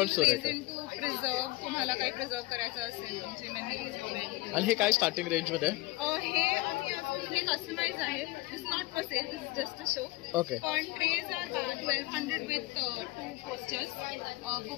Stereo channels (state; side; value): quieter; right; 20.3 dB